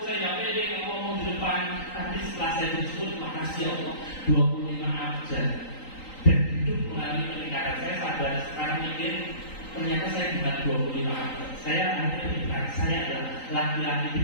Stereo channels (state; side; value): late; right; 3.9 ms